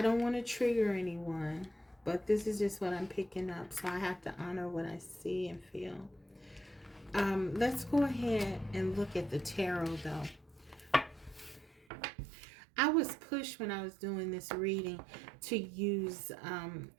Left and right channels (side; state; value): left; drops out; at 11.9 s